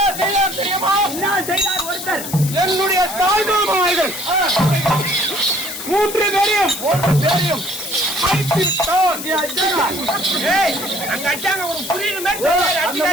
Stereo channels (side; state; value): left; noise; hiss, 8 dB below the sound